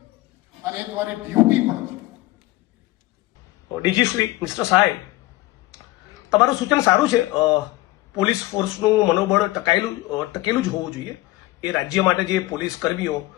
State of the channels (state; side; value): quieter; right; 18.6 dB